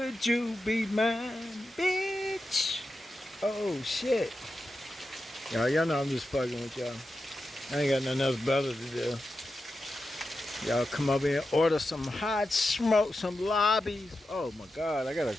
you be mine, bitch? Oh shit. Y'all know I'm just fucking with y'all. I ain't got nothing else better to do. Y'all come up here and order some hot smoke, some lobbies. Oh my god, I gotta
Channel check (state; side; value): normal; both; correlation 0.90